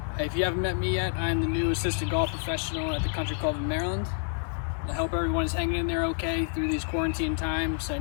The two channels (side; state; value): right; silent; 59 dB below the other